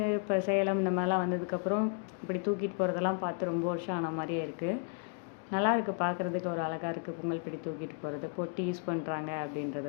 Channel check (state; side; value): quieter; right; 39.8 dB